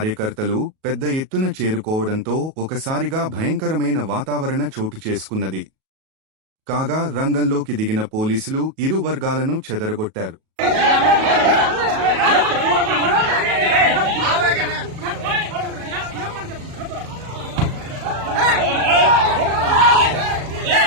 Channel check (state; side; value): late; left; 37 ms